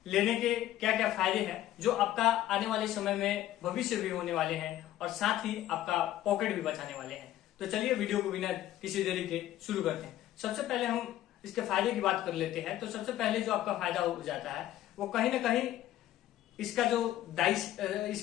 लेने के क्या क्या फायदे हैं जो आपका आने वाले समय में भविष्य भी होने वाले हैं और साथ ही आपका पॉकेट भी बचाने वाले हैं। तो चलिए वीडियो को बिना किसी देरी के शुरू करते हैं। सबसे पहले हम इसके फायदे की बात कर लेते हैं। तो सबसे पहले जो आपका फायदा हो जाता है वो कहीं ना कहीं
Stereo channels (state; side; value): quieter; right; 13.5 dB